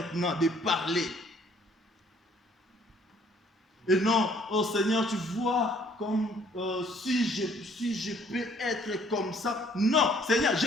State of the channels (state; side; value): normal; both; correlation 0.60